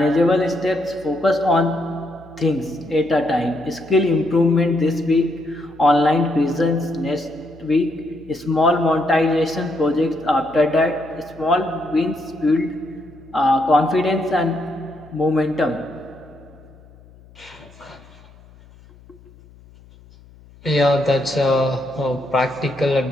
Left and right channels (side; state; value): left; noise; hum, 24 dB below the sound